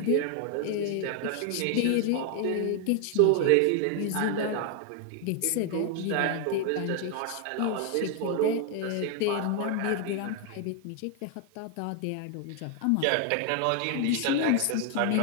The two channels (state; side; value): different; both; correlation 0.00